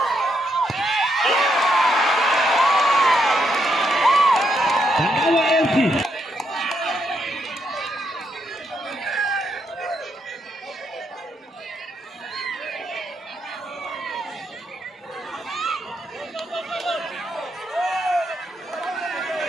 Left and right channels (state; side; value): normal; both; correlation 0.78